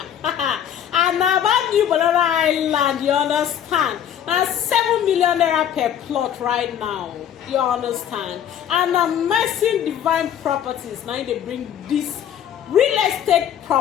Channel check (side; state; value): right; quieter; 9.8 dB